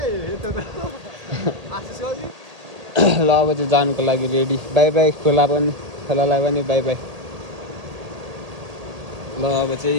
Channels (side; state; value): left; late; 1.8 ms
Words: ल अब चाहिँ जानुको लागि रेडी बाई बाई खोलालाई पनि बाई बाई। ल अब चाहिँ